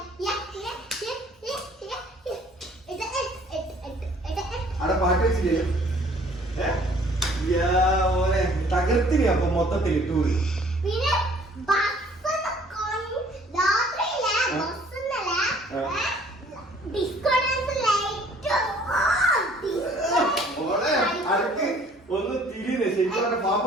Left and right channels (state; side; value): normal; both; correlation 0.56